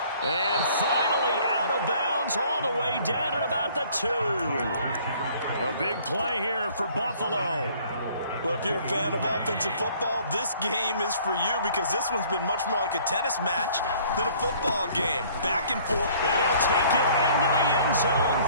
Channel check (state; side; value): inverted; both; correlation -0.56